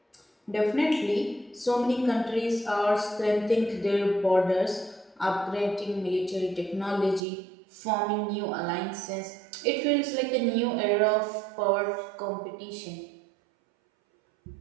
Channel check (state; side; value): drops out; left; at 7.2 s